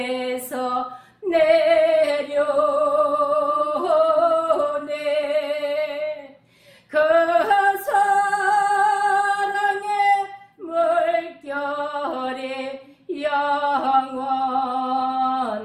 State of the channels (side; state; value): both; identical; correlation 1.00